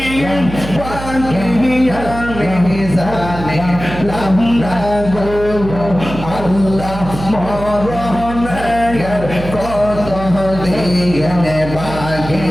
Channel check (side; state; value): right; noise; hum, 10 dB below the sound